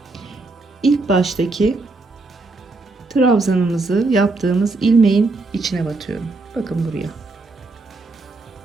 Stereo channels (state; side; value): quieter; left; 3.4 dB